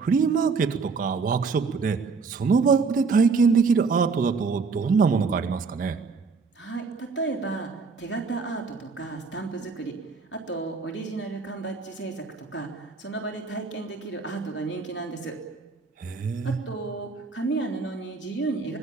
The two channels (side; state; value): left; quieter; 4.7 dB